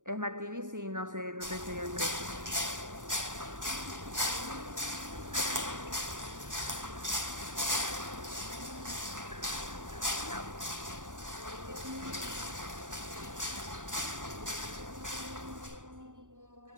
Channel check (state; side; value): late; left; 0.87 ms